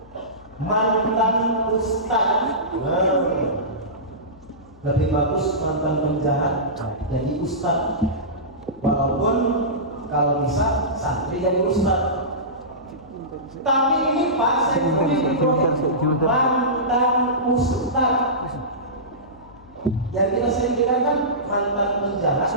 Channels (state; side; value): noise; left; hum, 24 dB below the sound